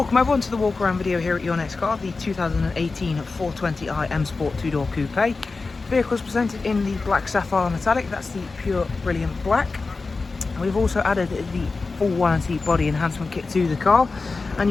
everyone to the walk around video here at Your Next Car, the 2018 420i M Sport 2-door coupe. The vehicle is presented in the black sapphire metallic, that's the pure brilliant black. And we've also added the full warranty body enhancement kit to the car,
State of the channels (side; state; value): right; quieter; 4.0 dB